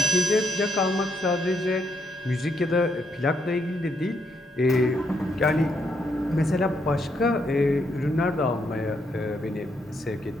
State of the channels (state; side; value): normal; both; correlation 0.77